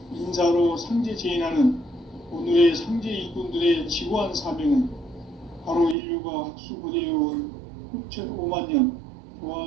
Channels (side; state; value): left; drops out; at 6.0 s